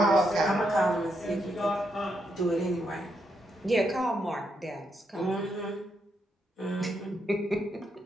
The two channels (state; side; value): normal; both; correlation 0.80